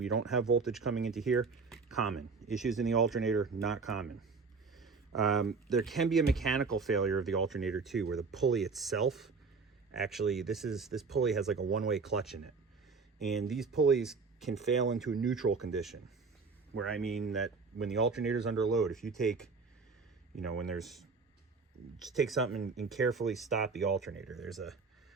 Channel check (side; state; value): left; quieter; 4.6 dB